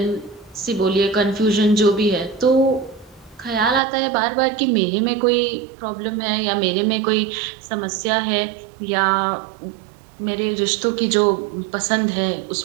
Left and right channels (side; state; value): left; drops out; at 3.8 s